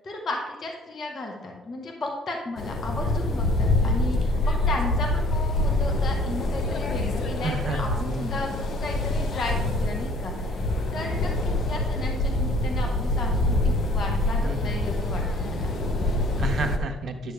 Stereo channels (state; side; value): normal; both; correlation 0.53